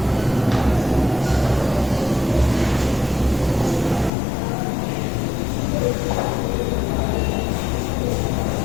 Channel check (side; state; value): right; drops out; at 4.1 s